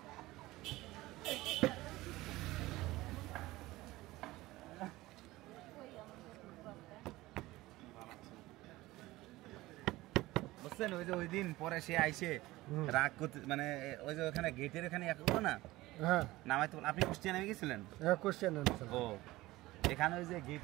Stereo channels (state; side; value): quieter; left; 18.6 dB